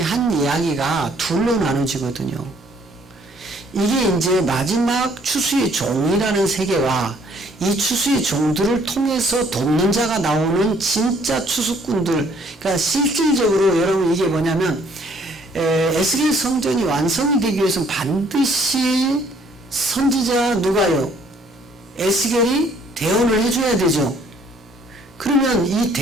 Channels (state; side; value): normal; both; correlation 0.62